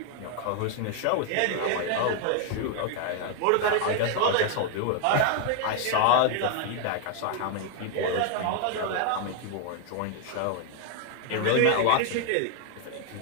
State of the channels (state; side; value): different; both; correlation 0.00